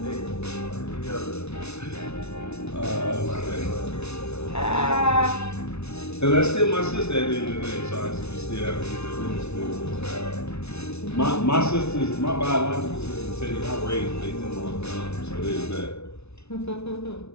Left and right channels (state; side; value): late; right; 0.81 ms